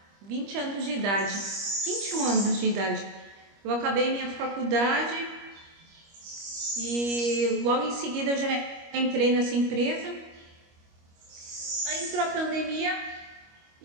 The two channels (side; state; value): left; late; 25 ms